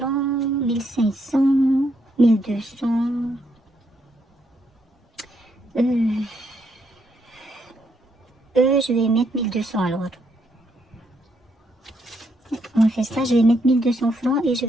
1500, 1200? Je vais mettre 1200 alors. On va faire ça, je vais mettre 1200 francs et je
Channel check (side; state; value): both; normal; correlation 0.75